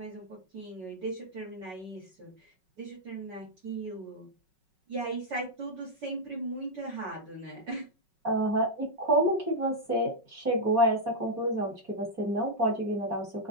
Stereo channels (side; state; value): left; late; 5.4 ms